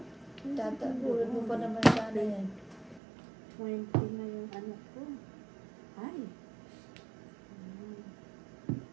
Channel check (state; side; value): drops out; left; at 3.0 s